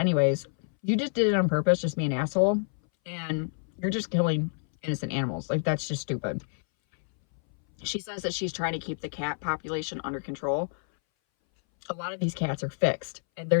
you just did it on purpose, just be an asshole, and you're just killing innocent animals. Like, that's just stupid. She says that she's trying to keep the cat population under control. A lot of these cats are fixed, and they're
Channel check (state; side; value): silent; right; 59 dB below the other